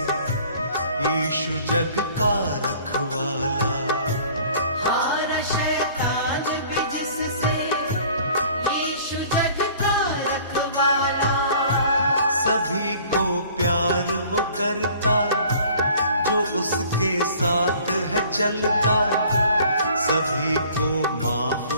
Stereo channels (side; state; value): both; inverted; correlation -0.51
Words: यीशु जग का रखवाला। हारा शैतान भी जिससे, यीशु जग का रखवाला। सभी को प्यार वो करता जो उसके साथ है चलता, सभी को माफ